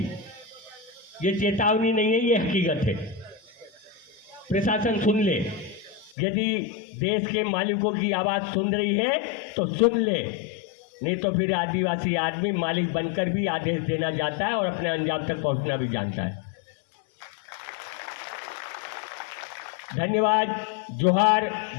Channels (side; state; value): right; drops out; at 6.2 s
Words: ये चेतावनी नहीं है, ये हकीकत है। प्रशासन सुन ले, यदि देश के मालिकों की आवाज़ सुन रही है तो सुन ले, नहीं तो फिर आदिवासी आदमी मालिक बनकर भी आदेश देना चाहता है और अपने अंजाम तक पहुंचना भी जानता है। धन्यवाद। जोहार।